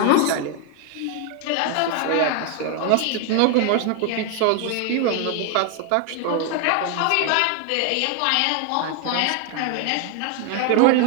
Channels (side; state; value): both; different; correlation 0.01